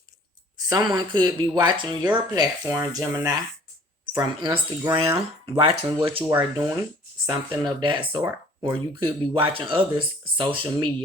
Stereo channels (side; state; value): both; normal; correlation 0.53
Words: Someone could be watching your platform, Gemini, from Instagram, watching what you are doing, something of that sort. Or you could be watching others' social